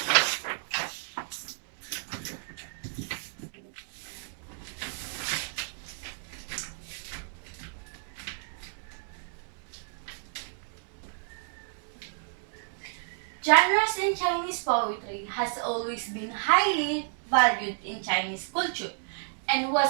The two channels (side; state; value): left; silent; digital silence